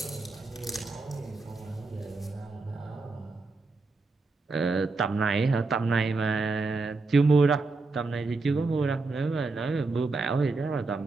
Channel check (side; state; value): left; quieter; 3.7 dB